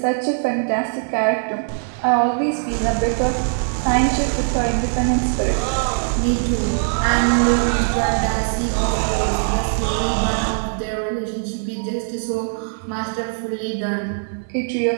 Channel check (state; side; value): silent; left; digital silence